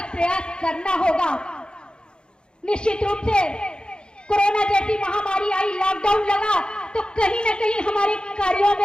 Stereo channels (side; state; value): right; late; 0.050 ms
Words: प्रयास करना होगा। निश्चित रूप से कोरोना जैसी महामारी आई, लॉकडाउन लगा, तो कहीं ना कहीं हमारे कार्यों